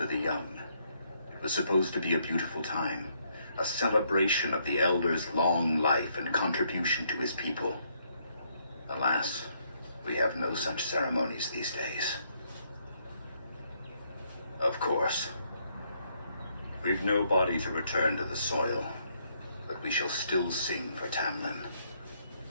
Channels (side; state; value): both; inverted; correlation -0.72